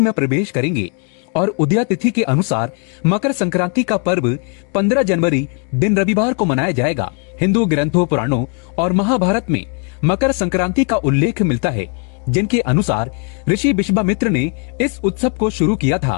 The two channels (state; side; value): quieter; right; 38.3 dB